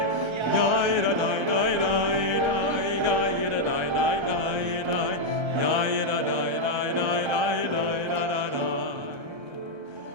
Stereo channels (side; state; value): left; late; 1.3 ms